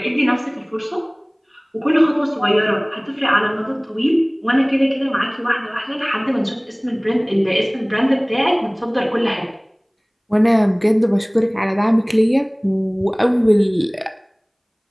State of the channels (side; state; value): both; identical; correlation 1.00